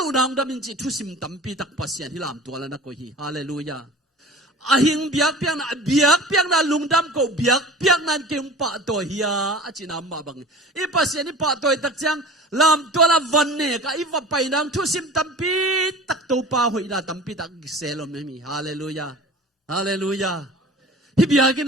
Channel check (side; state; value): both; normal; correlation 0.40